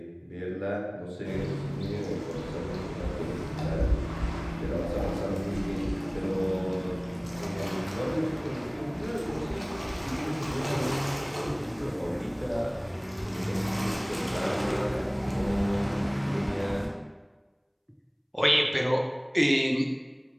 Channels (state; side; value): identical; both; correlation 1.00